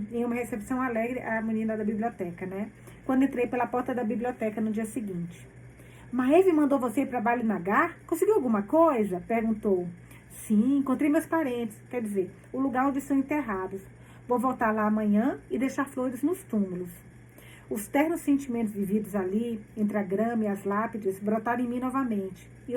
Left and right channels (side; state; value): both; identical; correlation 1.00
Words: em uma recepção alegre à menina da biblioteca, né? Quando entrei pela porta da biblioteca no dia seguinte. Maeve mandou você ir para Ballynagar? Conseguiu alguma coisa? Perguntou. Sim, encontrei meus parentes, quer dizer, o lugar onde estão enterrados. Vou voltar lá amanhã e deixar flores nos túmulos. Os ternos sentimentos vividos ali, entre a grama e as lápides, brotaram em mim novamente. E